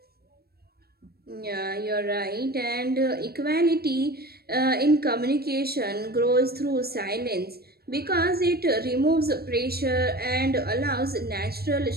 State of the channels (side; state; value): left; late; 0.45 ms